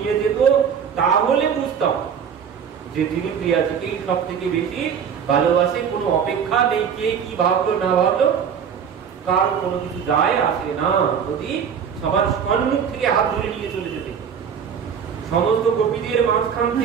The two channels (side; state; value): left; quieter; 7.4 dB